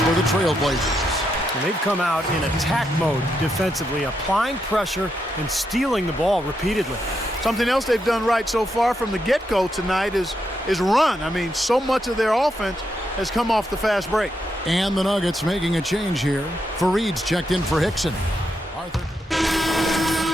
for the Trailblazers. And they've come out in attack mode defensively, applying pressure and stealing the ball repeatedly. Something else they've done right so far from the get-go tonight is run. I mean, so much of their offense has come off the fast break. And the Nuggets making a change here. Fareed's checked in for Hickson. Arthur.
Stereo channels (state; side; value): normal; both; correlation 0.82